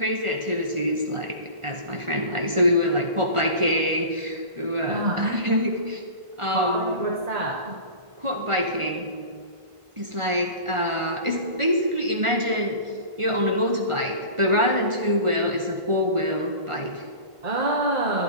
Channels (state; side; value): late; left; 1.4 ms